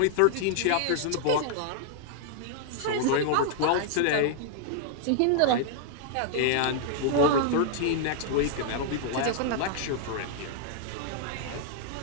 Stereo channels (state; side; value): different; both; correlation -0.01